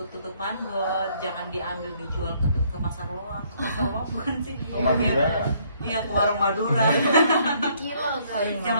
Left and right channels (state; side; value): inverted; both; correlation -0.66